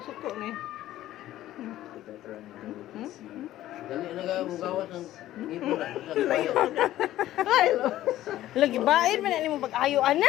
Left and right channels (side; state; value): right; quieter; 14.0 dB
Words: suko ni. Dali na ka gawas ng ngipon na sa tayo. Ay, Lagi baid man ni mo pag-ayo